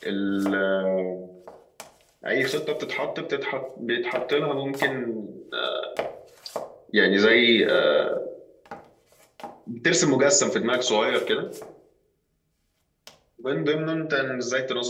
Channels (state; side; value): identical; both; correlation 1.00